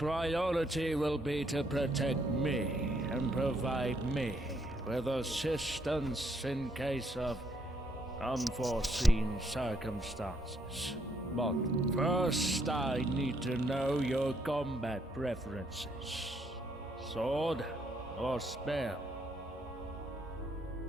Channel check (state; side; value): normal; both; correlation 0.72